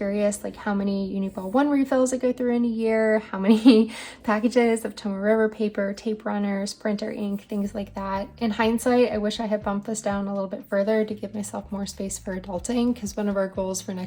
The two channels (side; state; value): both; identical; correlation 1.00